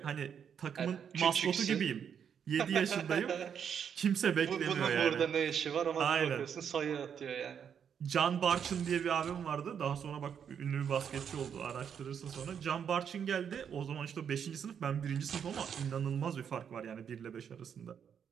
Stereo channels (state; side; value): quieter; left; 7.8 dB